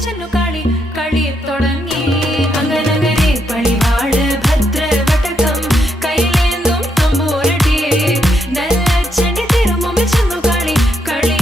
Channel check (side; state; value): both; normal; correlation 0.78